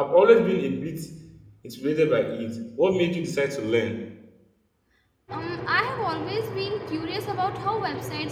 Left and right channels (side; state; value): both; identical; correlation 1.00